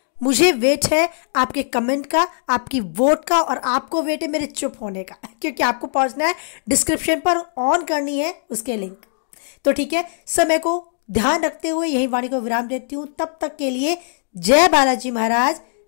मुझे वेट है आपके कमेंट का, आपकी वोट का, और आपको वेट है मेरे चुप होने का, क्योंकि आपको पहुंचना है डिस्क्रिप्शन पर, ऑन करनी है उसके लिंक। तो ठीक है, समय को ध्यान रखते हुए यही वाणी को विराम देती हूं। तब तक के लिए जय बालाजी महाराज,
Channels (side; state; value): right; silent; digital silence